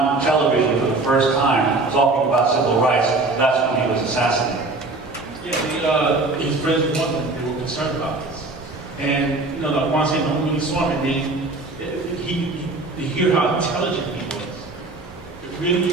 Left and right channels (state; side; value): quieter; left; 3.3 dB